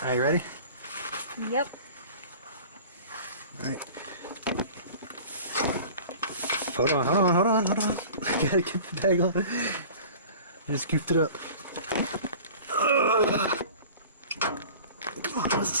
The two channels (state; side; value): inverted; both; correlation -0.42